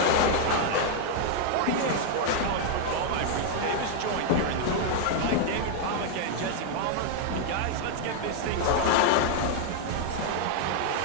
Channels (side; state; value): both; different; correlation 0.00